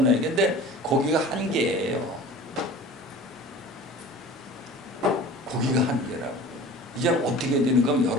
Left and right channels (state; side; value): normal; both; correlation 0.40